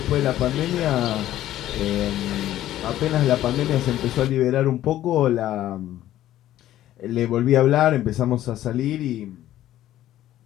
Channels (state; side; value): quieter; right; 13.3 dB